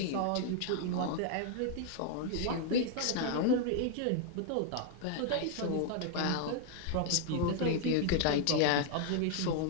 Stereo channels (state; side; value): different; both; correlation 0.00